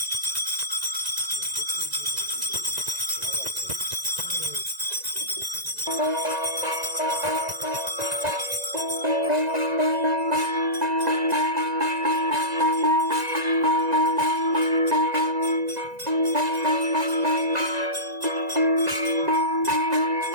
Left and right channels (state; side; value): late; left; 1.9 ms